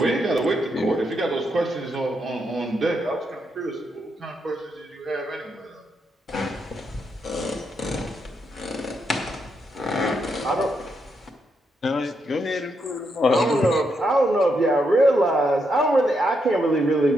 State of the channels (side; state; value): both; normal; correlation 0.80